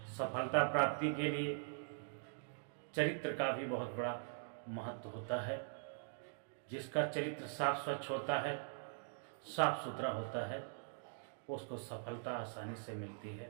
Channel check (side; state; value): left; silent; digital silence